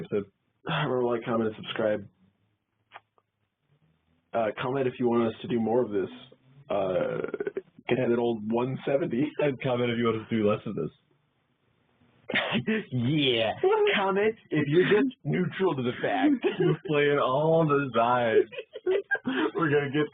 Remember, like, comment, and subscribe. Comment if you want us to do more of this. Get that old 170. And comment if you want us to do less of this. Yeah. Comment if you're just neutral to the fact. We're playing all the sides. We're going to get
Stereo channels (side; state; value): both; identical; correlation 1.00